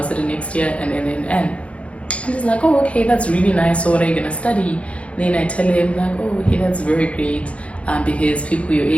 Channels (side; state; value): right; late; 0.062 ms